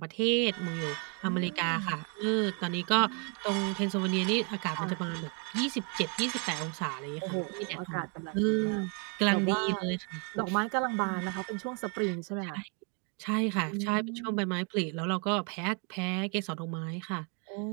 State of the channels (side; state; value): left; quieter; 35.8 dB